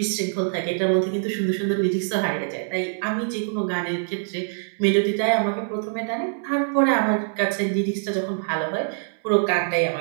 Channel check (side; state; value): left; silent; 63 dB below the other